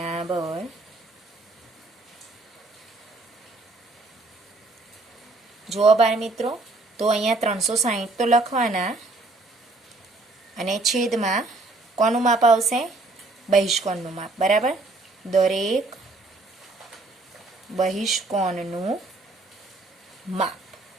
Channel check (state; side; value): quieter; left; 3.2 dB